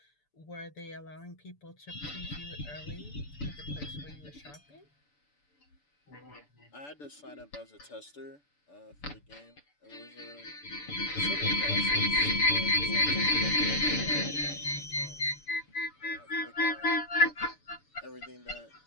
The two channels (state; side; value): late; right; 6.9 ms